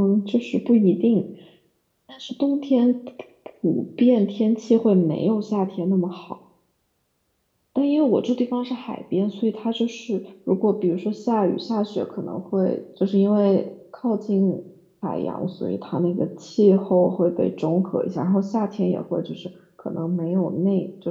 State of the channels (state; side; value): identical; both; correlation 1.00